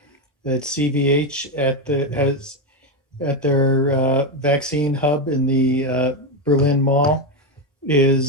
that CVH at their vaccine hub in the Berlin Mall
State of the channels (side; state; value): both; normal; correlation 0.10